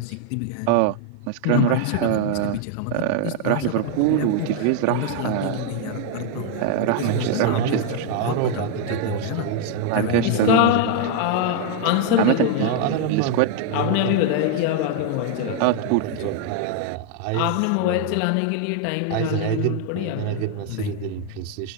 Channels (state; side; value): different; both; correlation 0.00